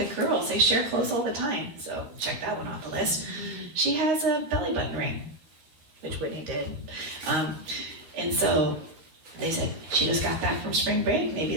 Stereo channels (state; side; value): late; left; 12 ms